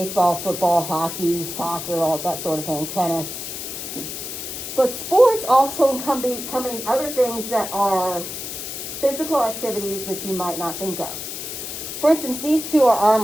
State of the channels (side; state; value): left; noise; hiss, 7 dB below the sound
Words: football, hockey, soccer, all that sort of thing, tennis. But sports also encompass other things that are physical activities that you might not think of. For instance, these two are